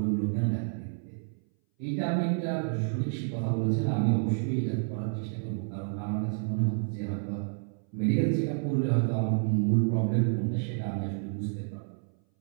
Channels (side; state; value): left; silent; 58 dB below the other